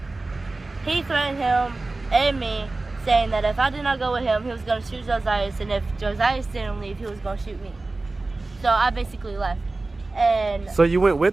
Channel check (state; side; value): quieter; left; 3.3 dB